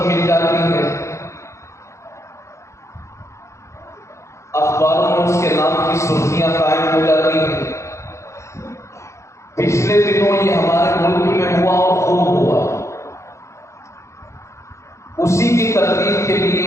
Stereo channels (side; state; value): right; late; 0.14 ms